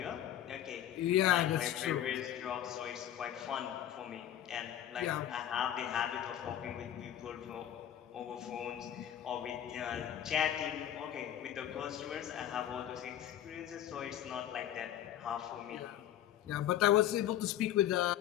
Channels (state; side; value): quieter; right; 11.3 dB